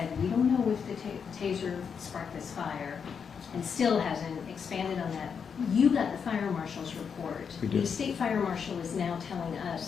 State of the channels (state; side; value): quieter; right; 6.6 dB